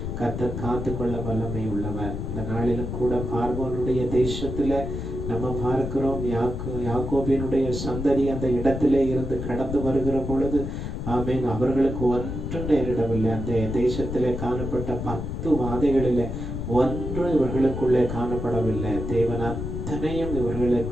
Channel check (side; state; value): left; noise; rumble, 5 dB below the sound